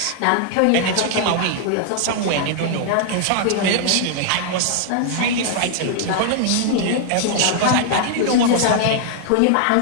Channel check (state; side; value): different; both; correlation 0.00